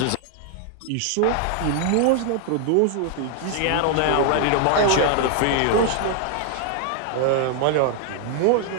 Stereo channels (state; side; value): different; both; correlation 0.00